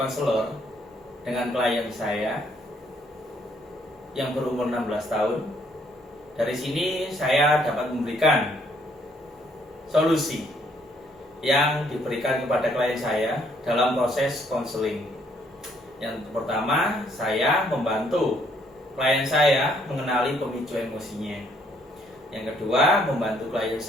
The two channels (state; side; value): normal; both; correlation 0.67